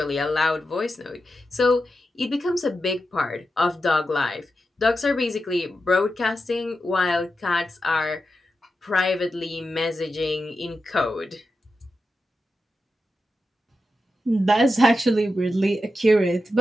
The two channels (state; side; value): normal; both; correlation 0.89